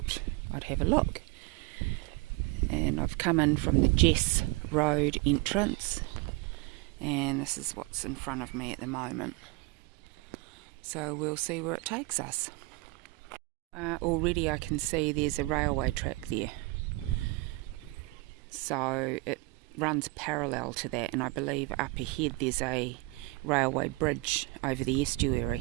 I'd have a look. And I've come in from the Jess Road entrance, and this is what's in front of me at the moment. So we'll see where it takes us. Already I can see there's a railway track there. So it runs parallel to that, and I believe up ahead there's a railway bridge over the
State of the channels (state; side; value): quieter; left; 23.7 dB